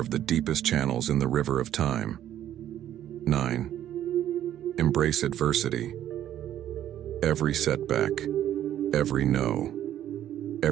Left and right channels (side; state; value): left; quieter; 11.5 dB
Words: the deepest channels in the river of time. 9. Embrace adversity. Every setback, every no,